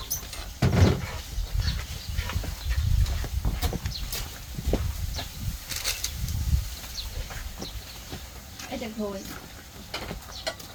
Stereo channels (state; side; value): identical; both; correlation 1.00